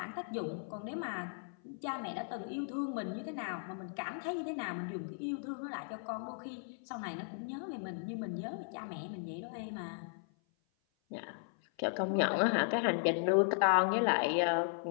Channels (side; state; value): right; silent; 53 dB below the other